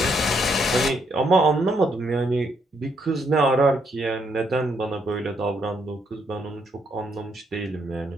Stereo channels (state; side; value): normal; both; correlation 0.74